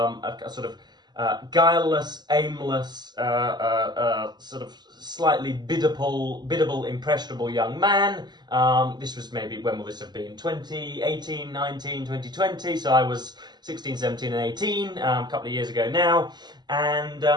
sort of guileless, aimless, sort of slightly biddable, impressionable young man. This was maybe, when will this have been? 2018, 19, 2020. So I was 16, 17 and 18, a couple of years ago now. And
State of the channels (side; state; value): left; late; 0.21 ms